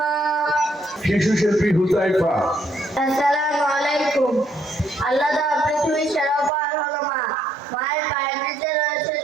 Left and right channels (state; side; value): drops out; left; at 6.5 s